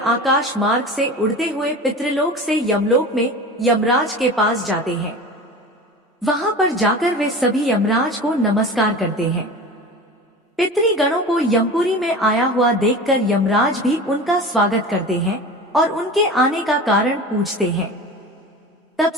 आकाश मार्ग से उड़ते हुए पितृलोक से यमलोक में यमराज के पास जाते हैं। वहां पर जाकर वे सभी यमराज को नमस्कार करते हैं। पितृगणों को यमपुरी में आया हुआ देखकर यमराज भी उनका स्वागत करते हैं और उनके आने का कारण पूछते हैं। तब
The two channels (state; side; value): normal; both; correlation 0.33